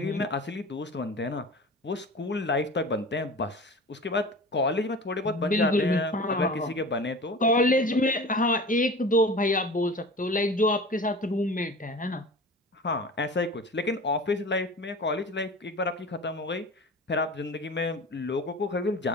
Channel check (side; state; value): both; normal; correlation 0.37